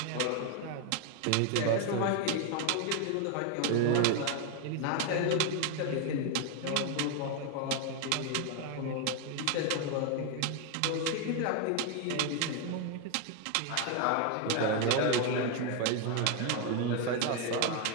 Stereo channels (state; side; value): different; both; correlation 0.01